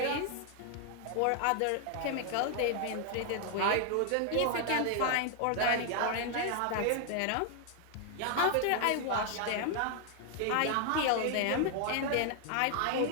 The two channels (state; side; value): different; both; correlation 0.00